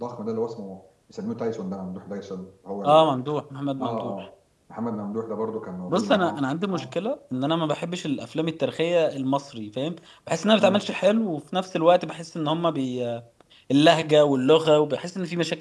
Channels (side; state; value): both; identical; correlation 1.00